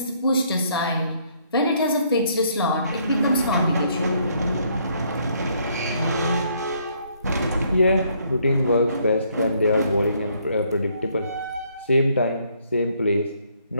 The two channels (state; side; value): inverted; both; correlation -0.68